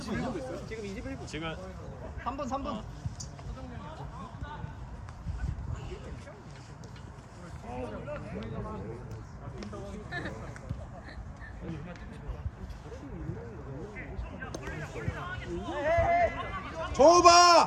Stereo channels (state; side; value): identical; both; correlation 1.00